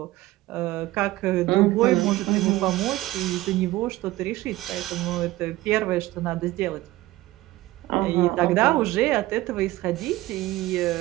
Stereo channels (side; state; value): left; quieter; 17.5 dB